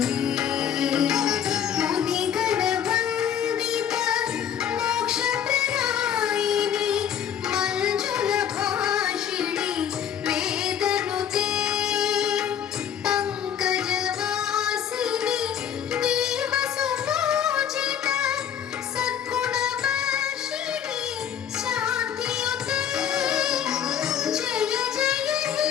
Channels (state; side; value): quieter; right; 9.2 dB